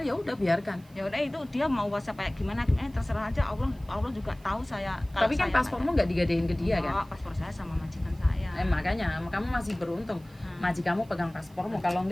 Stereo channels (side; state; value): right; noise; hiss, 28 dB below the sound